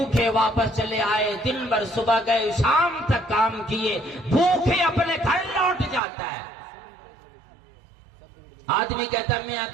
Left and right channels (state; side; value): drops out; left; at 6.0 s